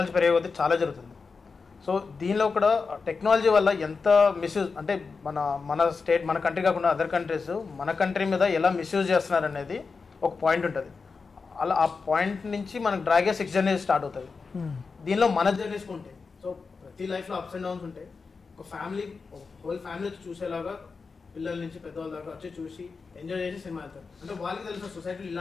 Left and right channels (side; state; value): right; quieter; 4.7 dB